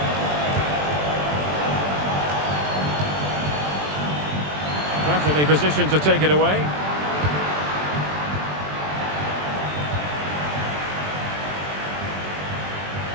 Perfectly positioned to take it away.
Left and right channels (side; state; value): left; late; 20 ms